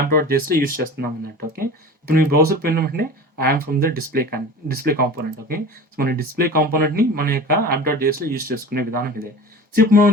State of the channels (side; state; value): both; normal; correlation 0.36